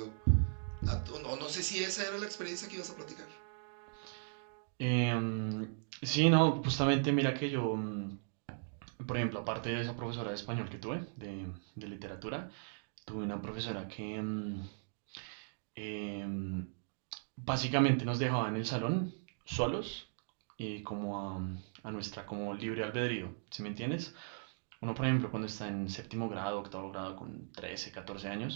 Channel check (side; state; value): left; silent; digital silence